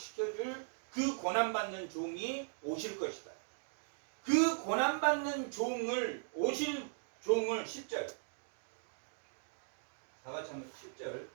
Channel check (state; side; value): silent; left; digital silence